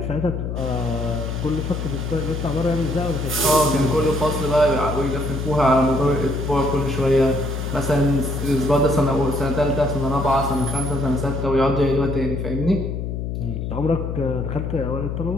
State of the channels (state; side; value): noise; left; hum, 4 dB below the sound